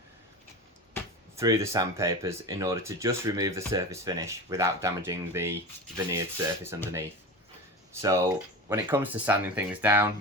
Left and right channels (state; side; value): normal; both; correlation 0.27